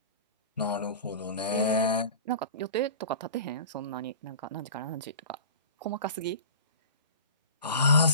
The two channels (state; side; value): inverted; both; correlation -0.37